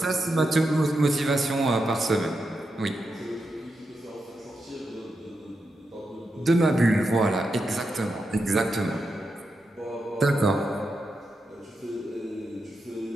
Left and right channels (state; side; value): normal; both; correlation 0.86